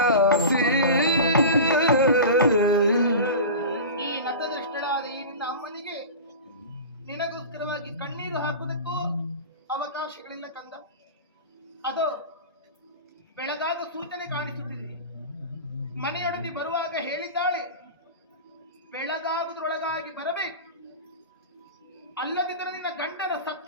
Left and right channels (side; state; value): both; inverted; correlation -0.31